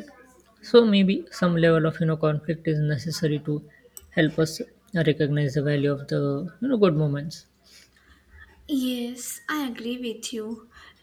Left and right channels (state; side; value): identical; both; correlation 1.00